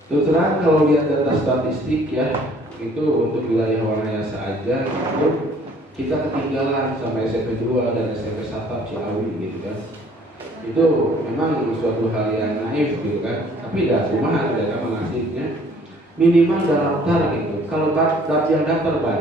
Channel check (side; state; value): both; normal; correlation 0.57